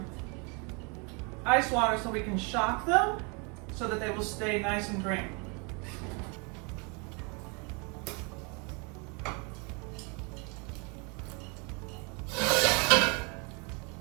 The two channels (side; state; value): left; quieter; 32.6 dB